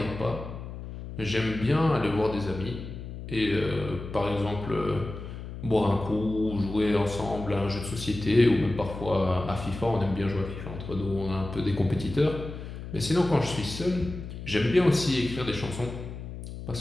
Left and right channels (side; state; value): left; noise; hum, 10 dB below the sound